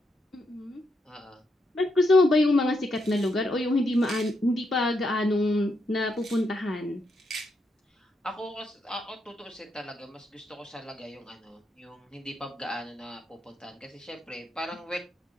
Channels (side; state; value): both; normal; correlation 0.80